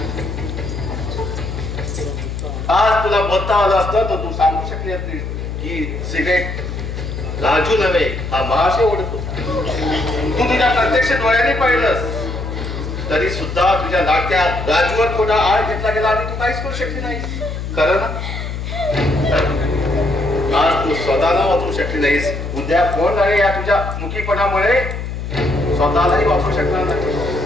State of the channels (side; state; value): left; noise; hum, 6 dB below the sound